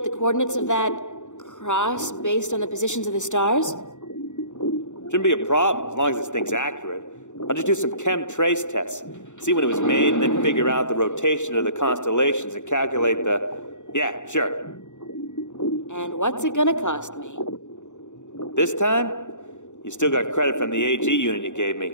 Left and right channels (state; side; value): late; right; 0.85 ms